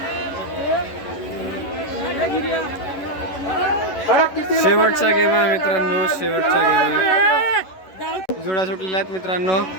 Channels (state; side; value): late; right; 11 ms